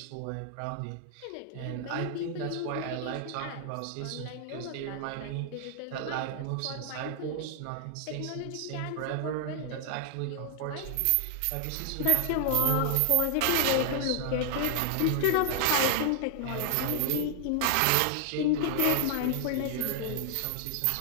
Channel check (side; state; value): both; different; correlation 0.00